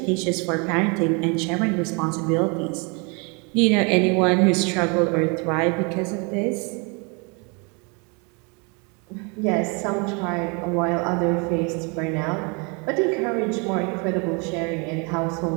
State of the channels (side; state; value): left; quieter; 32.2 dB